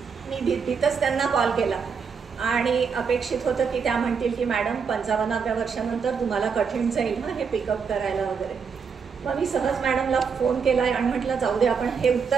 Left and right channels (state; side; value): quieter; left; 6.0 dB